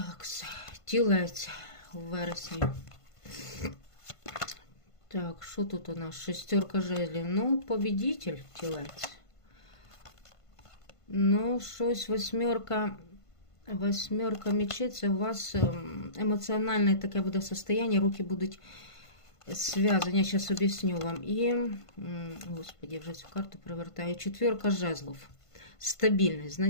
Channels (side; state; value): right; late; 1.5 ms